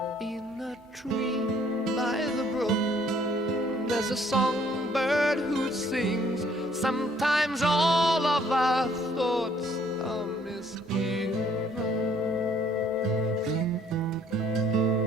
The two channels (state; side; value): normal; both; correlation 0.62